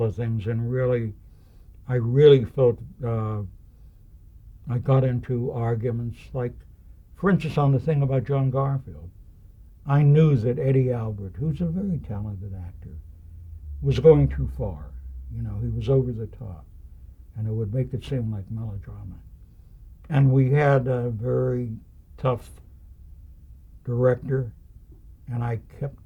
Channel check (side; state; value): both; identical; correlation 1.00